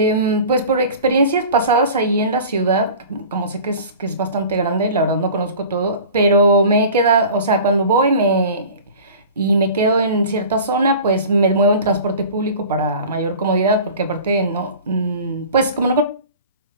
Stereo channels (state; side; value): inverted; both; correlation -0.40